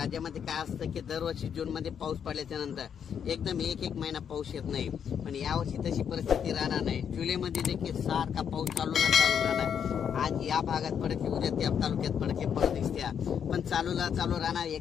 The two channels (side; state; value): right; quieter; 8.0 dB